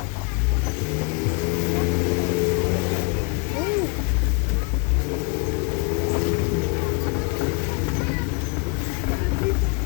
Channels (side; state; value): right; quieter; 32.4 dB